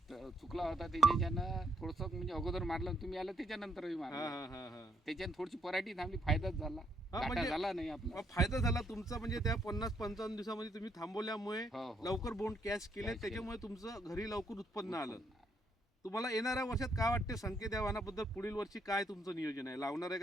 होता त्याच्यानं थोडंसं, म्हणजे अगोदर मारलं, तुम्ही आलं त्याच्यानंतरही मारलं. त्याच्यानं थोडीशी पराठी थांबली, फायदाच झाला. म्हणजे झाला नाही आपला, फायदा झाला तुमचा. म्हणजे त्या 50-55 दिवसामध्ये तुम्ही थांबवल्यामुळे लवकर बोंड कॅच केले, त्याच्यामुळे तुमचं घरी लवकर उत्पन्न आलं. तुम्हाला येणाऱ्या वर्षात काय वाटते संकेत या वाणाबद्दल? पुढील वर्षी काय तुमचं नियोजन आहे? लावणार आहे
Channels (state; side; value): normal; both; correlation 0.74